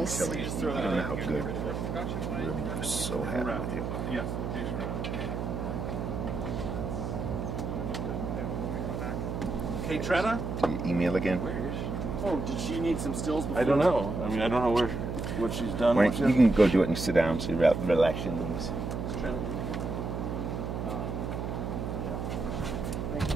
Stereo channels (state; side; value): noise; right; hum, 3 dB below the sound